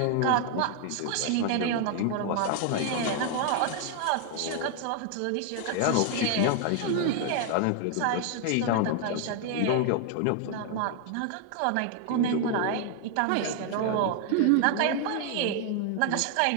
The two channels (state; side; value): different; both; correlation 0.00